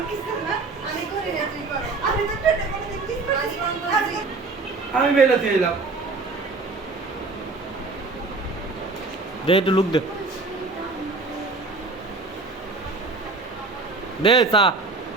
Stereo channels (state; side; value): quieter; left; 3.7 dB